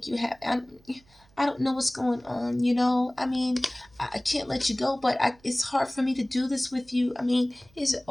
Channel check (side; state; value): right; noise; hum, 30 dB below the sound